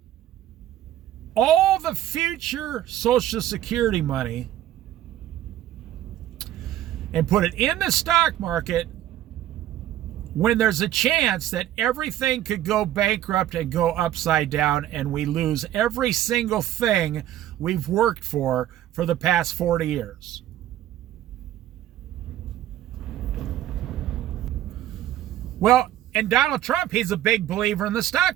all the future Social Security money and put it in the stock market when there's a chance that everything could go bankrupt and go upside down, and we lose every single thing we've worked for the past 40 years. Well, and Donald Trump, he's a big believer in the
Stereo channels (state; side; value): quieter; left; 12.6 dB